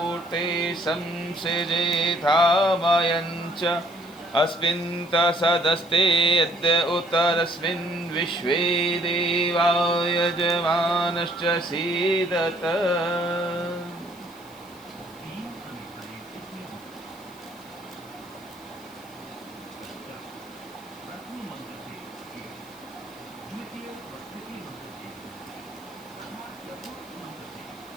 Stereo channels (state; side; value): noise; left; hiss, 24 dB below the sound